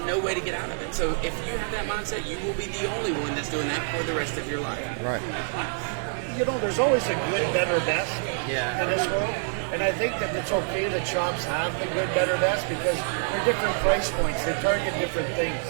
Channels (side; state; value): left; silent; 60 dB below the other